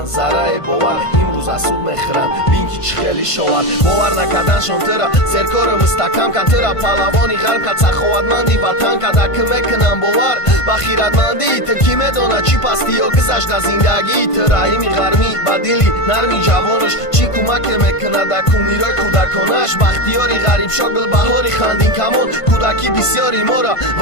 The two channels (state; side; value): late; right; 1.5 ms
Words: зарраи бовар, имрӯз аз суд мехӯранд, бин ки чӣ хеле шовар. Бовар накарданшон тыра серкори мустаҳкам кард, тыра паҳлавони ғарб кард, саховатманди ватан кард. Аки мекунам бовар ба хиратмандии ту, ки медонад чӣ пастӣ ё гузашта зиндагии ту. Раҳими ғармӣ ба дили нарми ҷавонаш чӣ кӯмаке мекунад дар кумирои кӯдаконаш. Бахтиёри ғарибшо гулбаҳори хандин камон, кӯдаки бисёр мора